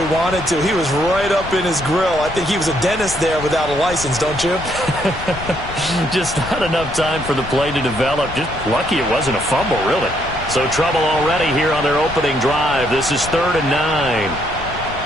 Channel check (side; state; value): left; noise; rumble, 12 dB below the sound